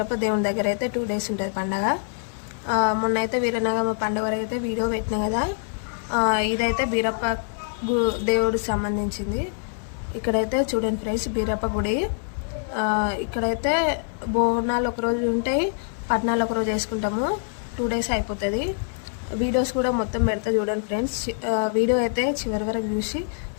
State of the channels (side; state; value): right; silent; digital silence